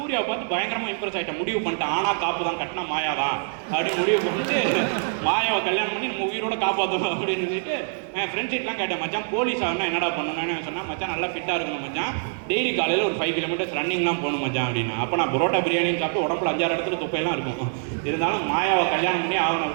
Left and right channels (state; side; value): silent; left; digital silence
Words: பார்த்து பயங்கரமாக இம்ப்ரெஸ் ஆகிட்டேன். முடிவு பண்ணிட்டேன், ஆனால் காப்பு தான், கட்டினா மாயா தான் அப்படின்னு முடிவு பண்ணிட்டு மாயாவை கல்யாணம் பண்ணி நம்ம உயிரோட காப்பாற்றணும் அப்படின்னு சொல்லிட்டு என் ஃப்ரெண்ட்ஸ் கிட்டலாம் கேட்டேன், மச்சான் போலீஸ் ஆகணும் என்னடா பண்ணணும்னு சொன்னால், மச்சான் நல்லா ஃபிட்டாக இருக்கணும் மச்சான், டெய்லி காலையில் ஒரு 5 கிலோமீட்டர்ஸ் ரன்னிங்லாம் போகணும் மச்சான் அப்படின்னா. அப்போ நான் பரோட்டா பிரியாணின்னு சாப்பிட்டு உடம்புல 5-6 இடத்துல தொப்பையெல்லாம் இருக்கும். இருந்தாலும் மாயாவை கல்யாணம் பண்ணி ஆகணும்